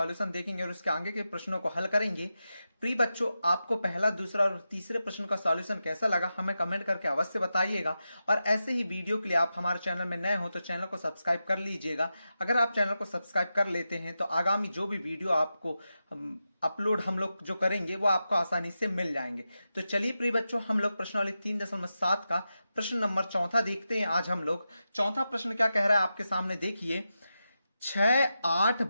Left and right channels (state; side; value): inverted; both; correlation -0.90